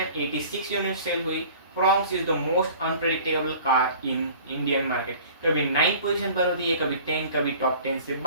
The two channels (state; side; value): inverted; both; correlation -0.46